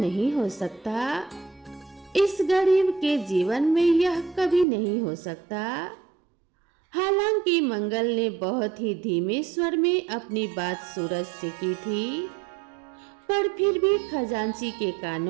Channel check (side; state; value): left; drops out; at 4.7 s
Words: हो सकता। इस गरीब के जीवन में यह कभी नहीं हो सकता। हालांकि मंगल ने बहुत ही धीमे स्वर में अपनी बात सूरज से की थी, पर फिर भी खजांची के